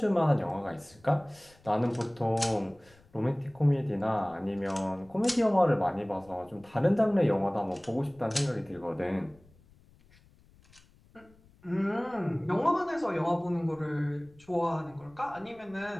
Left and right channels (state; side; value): noise; left; rumble, 28 dB below the sound